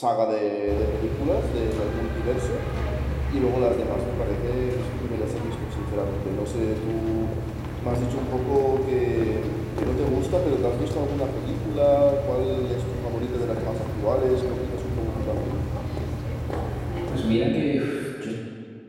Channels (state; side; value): identical; both; correlation 1.00